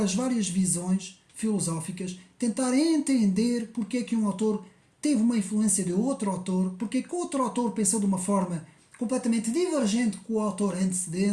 as várias visões filosóficas, tentar entender porque é que um autor teve uma influência de outro autor, porque é que outro autor pensou de uma forma completamente divergente com o autor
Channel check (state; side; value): identical; both; correlation 1.00